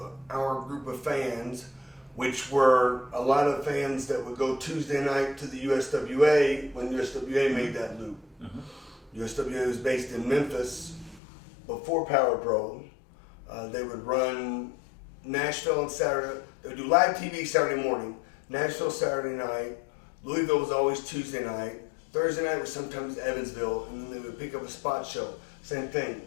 our group of fans, which were a lot of fans that would go Tuesday night to the USWA when USWA made that loop. USWA was based in Memphis before Power Pro. They would run Nashville on Saturday. They would do live TV Saturday morning, Nashville Saturday night, Louisville was always Tuesday night, Thursday night was sometimes Evansville, and then they would pick up a spot show. Same thing,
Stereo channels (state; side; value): drops out; right; at 11.2 s